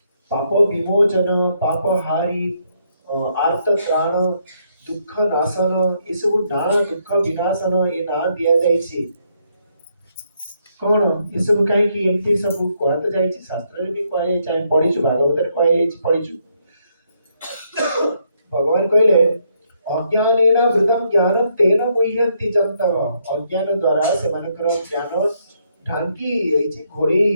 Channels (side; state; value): both; inverted; correlation -0.74